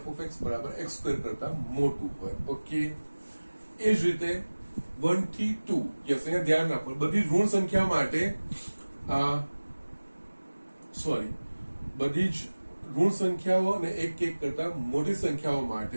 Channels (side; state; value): both; inverted; correlation -1.00